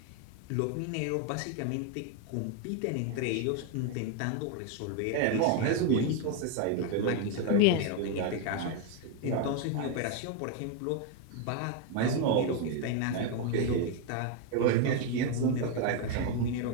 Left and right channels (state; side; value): different; both; correlation 0.01